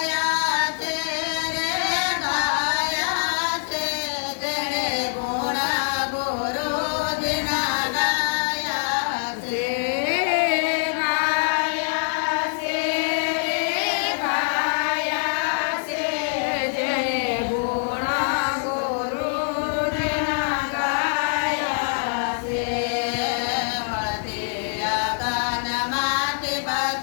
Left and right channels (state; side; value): silent; right; digital silence